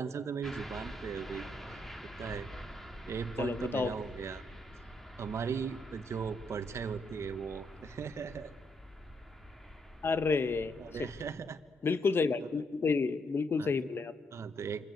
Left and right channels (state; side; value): normal; both; correlation 0.76